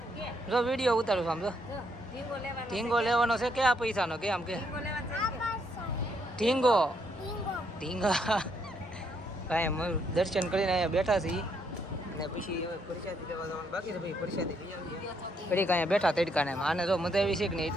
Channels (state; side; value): normal; both; correlation 0.73